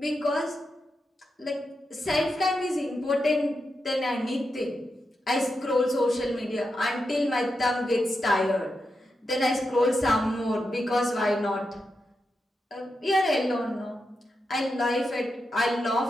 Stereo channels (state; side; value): normal; both; correlation 0.87